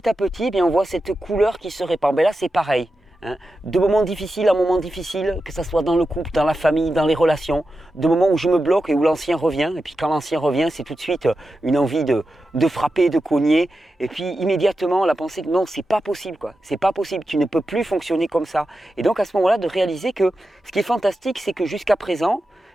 à petit, bien, on voit cette couleur qui se répand. Ben là, c'est pareil. Hein. De moments difficiles à moments difficiles, que ce soit dans le couple, dans la famille, dans les relations, de moments où je me bloque et où l'ancien revient. Et puis quand l'ancien revient, c'est tout de suite une envie de frapper, de cogner. Et puis immédiatement, la pensée que non, c'est pas possible, quoi. C'est pas possible, tu ne peux plus fonctionner comme ça. Et donc à ce moment-là, de réaliser que ce qui est fantastique, c'est que jusqu'à présent,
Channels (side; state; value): both; normal; correlation 0.91